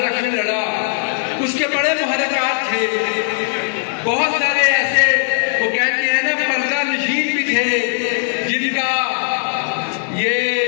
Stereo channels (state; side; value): silent; right; digital silence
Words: लड़ा। उसके बड़े मुहर्रिकात थे, बहुत सारे ऐसे वो कहते हैं ना पर्दा नशीन भी थे जिनका